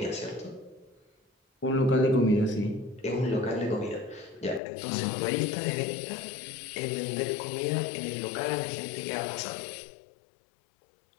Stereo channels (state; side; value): drops out; right; at 4.6 s